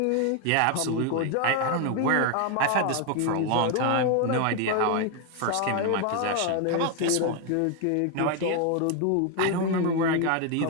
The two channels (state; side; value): different; both; correlation 0.01